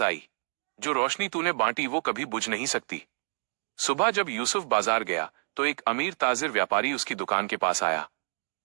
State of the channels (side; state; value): left; silent; digital silence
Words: आई, जो रोशनी तूने बांटी वो कभी बुझ नहीं सकती। सुबह जब यूसुफ बाजार गया तो एक अमीर ताजिर व्यापारी उसकी दुकान के पास आया।